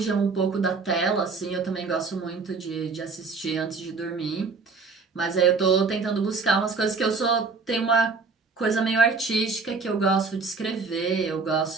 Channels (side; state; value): left; quieter; 4.5 dB